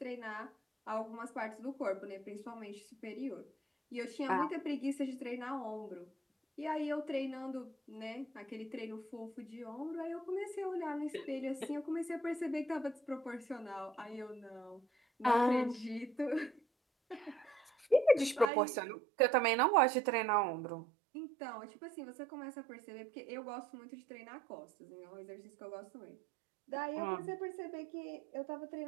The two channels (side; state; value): left; drops out; at 18.5 s